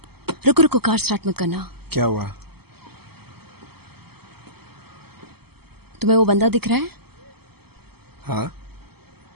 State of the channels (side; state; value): left; late; 0.96 ms